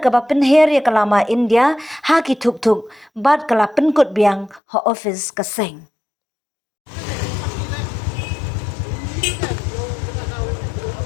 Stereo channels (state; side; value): drops out; right; at 4.6 s